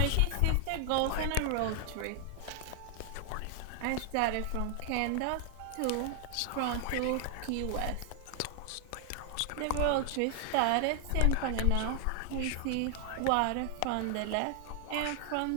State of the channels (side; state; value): both; different; correlation 0.00